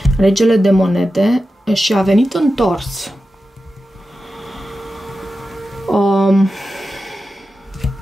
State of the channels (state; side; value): normal; both; correlation 0.92